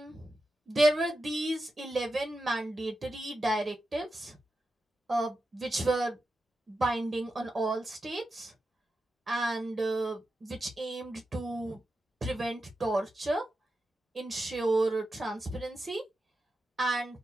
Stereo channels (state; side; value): normal; both; correlation 0.89